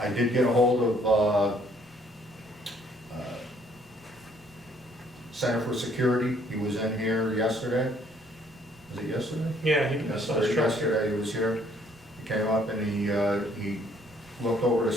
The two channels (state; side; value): normal; both; correlation 0.63